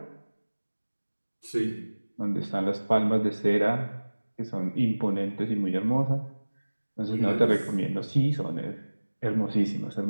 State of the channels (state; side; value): inverted; both; correlation -1.00